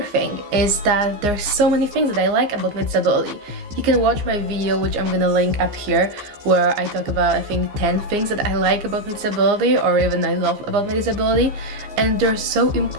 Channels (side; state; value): left; late; 15 ms